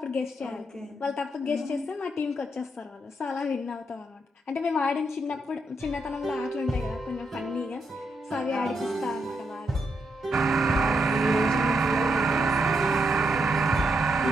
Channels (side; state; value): both; normal; correlation 0.80